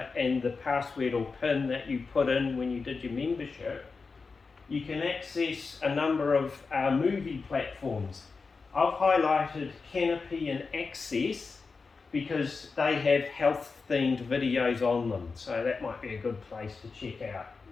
and the password or PIN that you put in when you did your membership, you can access a number of movie platforms. I've highlighted Canopy and Access because they have health-themed videos on them, so that might be a good place to check out.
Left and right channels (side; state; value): right; quieter; 4.6 dB